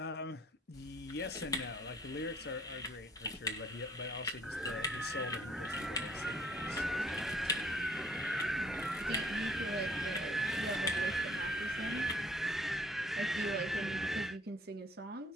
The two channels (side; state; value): both; normal; correlation 0.59